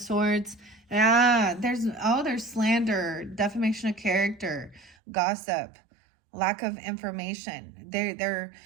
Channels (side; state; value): left; drops out; at 5.0 s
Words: Yeah, there's slander, defamation of character, gossip, lack of information. They're